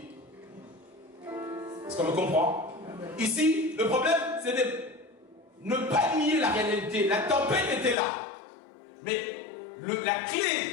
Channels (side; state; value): right; drops out; at 8.0 s